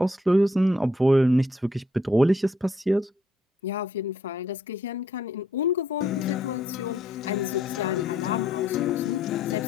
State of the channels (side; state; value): both; normal; correlation 0.69